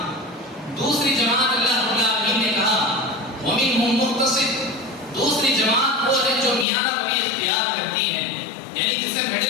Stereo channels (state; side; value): drops out; right; at 6.7 s